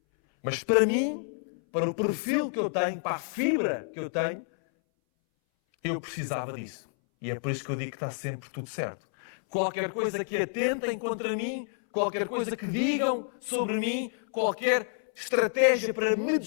Mas para mim, para o perfil que eu tenho, para a fibra que eu tenho, eu precisava disso. E é por isso que eu digo que está sempre tudo certo. Qualquer coisa que atentem contra mim, qualquer coisa que digam sobre mim, qualquer estratégia para me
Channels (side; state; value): right; silent; 59 dB below the other